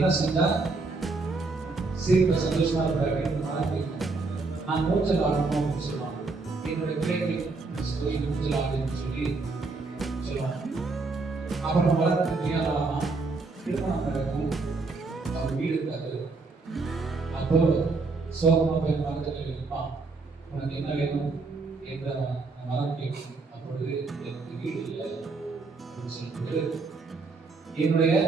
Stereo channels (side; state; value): left; quieter; 3.8 dB